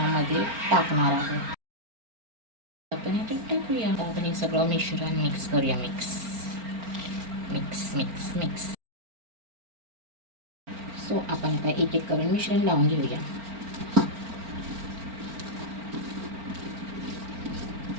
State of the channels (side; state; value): left; late; 4.4 ms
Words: टाकणार आहोत. आपण हे टाकूया. आपण हे सगळं मिश्रण मिक्स करूया. Mix mix mix mix so आपण आता एक एक करून मिश्रण लावून घेऊया.